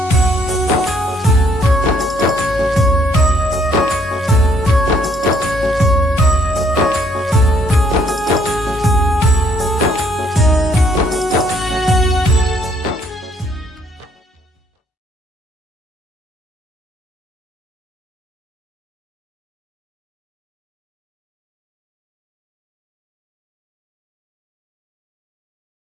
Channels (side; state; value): both; normal; correlation 0.66